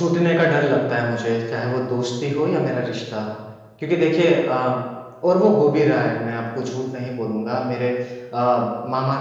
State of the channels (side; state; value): both; identical; correlation 1.00